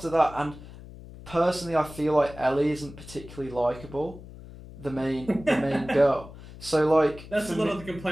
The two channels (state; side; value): noise; left; hum, 16 dB below the sound